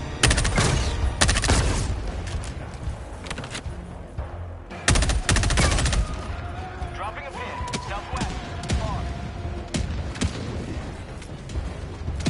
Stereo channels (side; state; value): both; identical; correlation 1.00